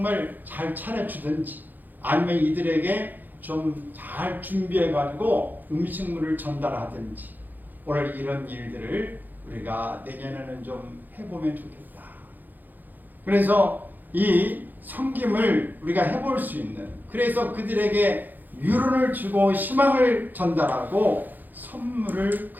잘 차려주든지, 아니면 이들에게 좀 잘 준비해가지고 음식물을 전달하든지, 오늘 이런 일들을 우리가 내년에는 좀 해보면 좋겠다. 그래서 이 섬김을 우리가 해볼 수 있는, 그래서 그들에게 위로를 주고 희망을 전달하고 선물을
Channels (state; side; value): late; left; 0.086 ms